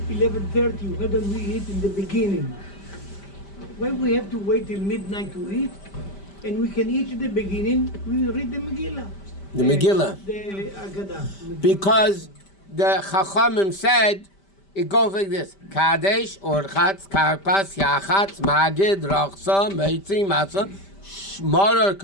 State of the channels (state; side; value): late; right; 5.1 ms